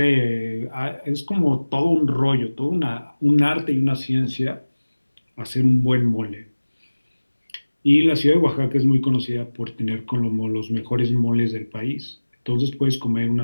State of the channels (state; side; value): inverted; both; correlation -1.00